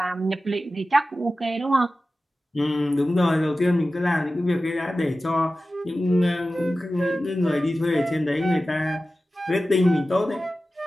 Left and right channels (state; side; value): normal; both; correlation 0.95